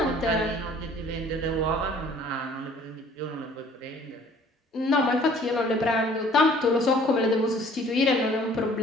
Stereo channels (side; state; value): both; normal; correlation 0.54